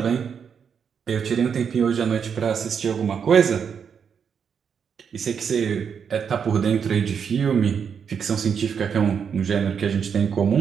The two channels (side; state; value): left; quieter; 7.0 dB